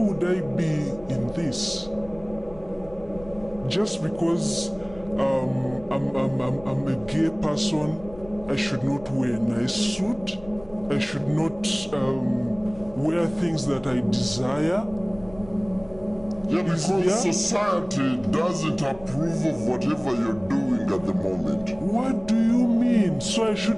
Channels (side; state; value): left; noise; rumble, 20 dB below the sound